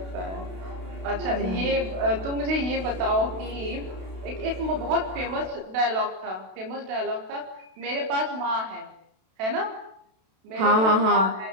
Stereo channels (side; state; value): left; late; 32 ms